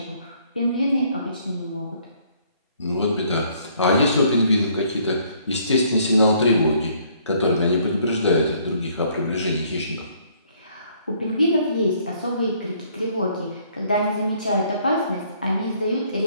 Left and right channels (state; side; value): inverted; both; correlation -0.63